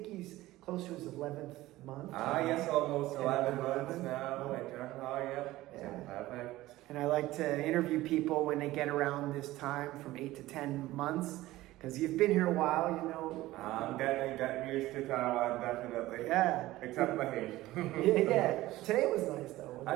he's close to his 11th month. Yes, almost 11 months now in Zhanghua, yep. Yeah. Perfect. And I like to interview people when they get around this time from 8 to 10 months, because you've been here a while, you know. I'm getting used to Taiwan, definitely. Yeah. Except the heat. Yeah. Today was nice though.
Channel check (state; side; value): quieter; left; 17.0 dB